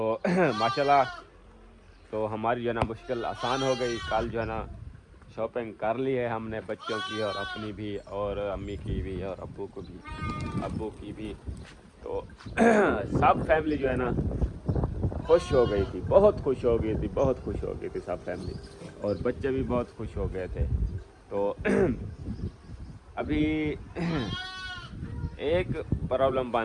माशाल्लाह, तो हमारी जो है ना मुश्किल आसान हो गई। कल जो है ना शॉपिंग कर ली है हमने, बच्चों की और अपनी भी, और अम्मी की भी, और अब्बू की भी। तो सब फैमिली जो है ना खुश हो गई थी, बहुत खुश हो गई थी, बहुत खुश हो गई थी सब फैमिली, और बच्चे भी बहुत खुश हो गए थे। तो अभी एक प्रॉब्लम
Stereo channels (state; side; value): identical; both; correlation 1.00